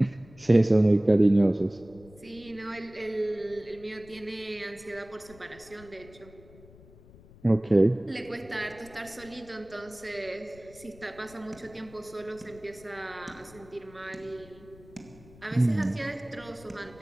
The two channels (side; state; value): left; noise; rumble, 23 dB below the sound